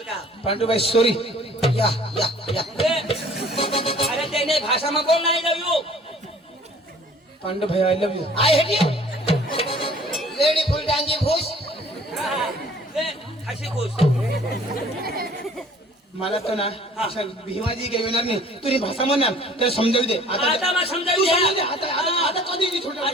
का पांडू भाई सॉरी या अरे त्याने भाषा में बोल नाही लव यू पांडू भाई I love you I hate you lady full डांगी भूस हसी खुश मला तो ना अशा भीमाजी काही येणार नाही तुझी भाषा म्हणणार त्याला समजावू दे आता मग समजावू तू द्या. समजावू दे. आता कधी नाही छोटा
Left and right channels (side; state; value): both; normal; correlation 0.52